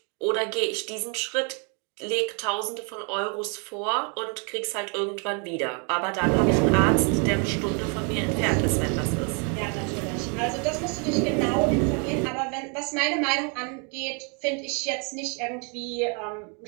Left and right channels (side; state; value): left; quieter; 36.5 dB